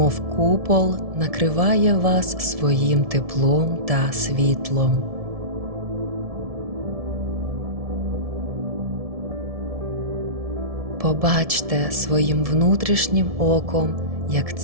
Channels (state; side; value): late; left; 1.7 ms